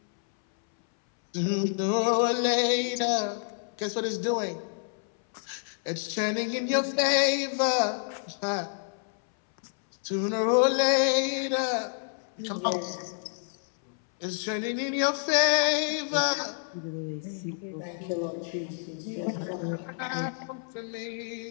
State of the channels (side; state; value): right; silent; 59 dB below the other